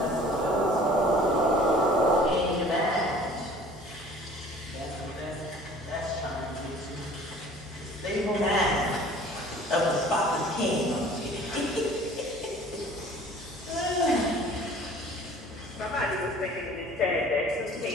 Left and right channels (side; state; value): both; normal; correlation 0.49